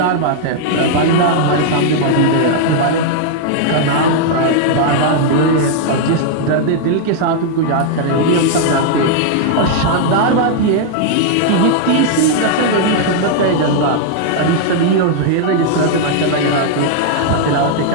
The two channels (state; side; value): different; both; correlation -0.01